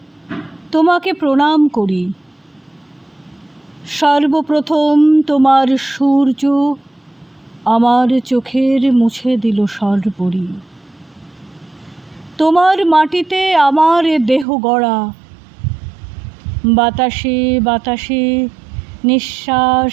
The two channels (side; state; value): left; drops out; at 14.5 s